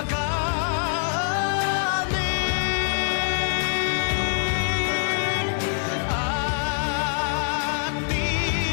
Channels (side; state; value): right; silent; digital silence